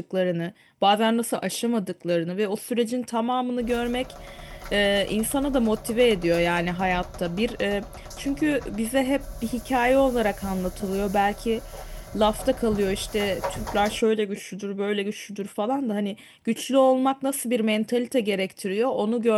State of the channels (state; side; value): identical; both; correlation 1.00